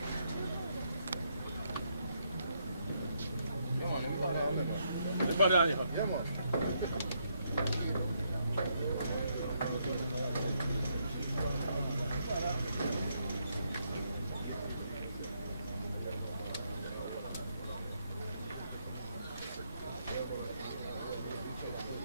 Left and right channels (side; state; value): both; inverted; correlation -0.76